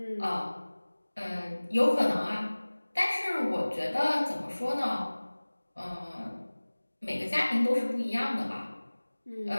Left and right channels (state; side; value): inverted; both; correlation -1.00